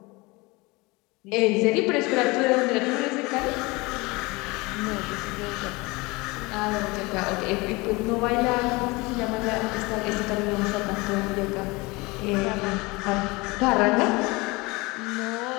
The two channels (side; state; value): right; quieter; 24.2 dB